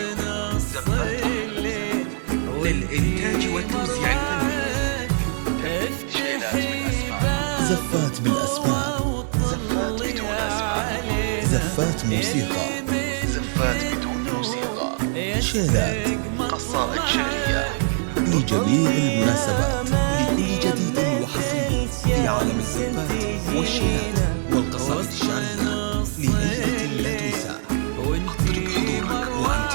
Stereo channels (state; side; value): silent; left; digital silence